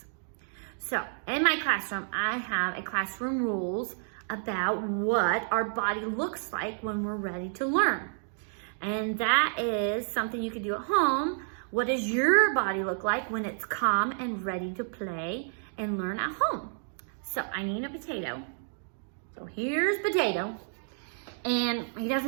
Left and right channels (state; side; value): silent; left; digital silence